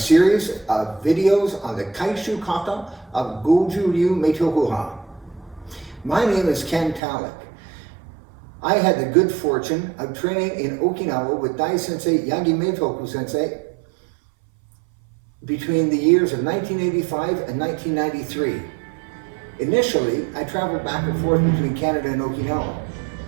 of videos on the Kaishu Kata of Goju Ryu Kata. My name is Ken Tallack. I had the good fortune of training in Okinawa with Dai Sensei Yagi Meitoku Sensei between the years of 1985 and 1993. Initially, I traveled back and forth between Canada and Okinawa.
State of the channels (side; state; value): left; drops out; at 7.0 s